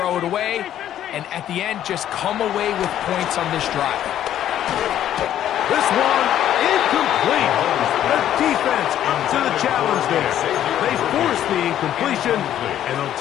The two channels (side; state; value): right; quieter; 11.3 dB